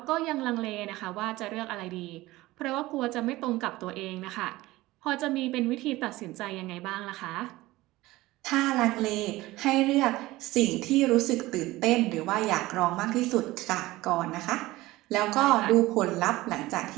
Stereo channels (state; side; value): quieter; left; 18.5 dB